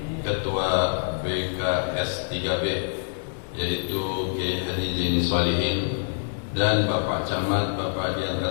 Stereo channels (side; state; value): right; silent; digital silence